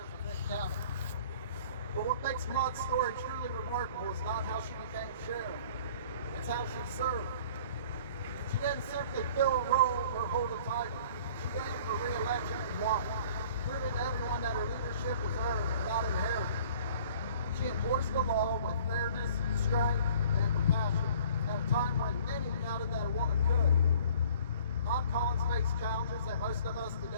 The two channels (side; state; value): both; inverted; correlation -0.51